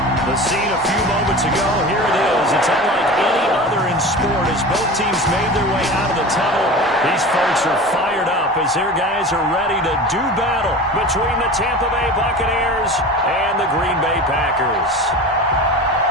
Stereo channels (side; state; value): both; normal; correlation 0.33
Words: The scene a few moments ago, here it is. It's unlike any other in sport as both teams made their way out of the tunnel. These folks are fired up as their guys are ready to do battle between the Tampa Bay Buccaneers and the Green Bay Packers.